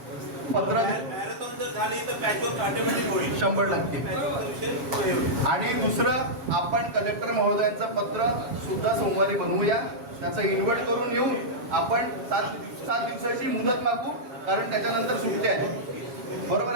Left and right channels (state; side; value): late; left; 7.3 ms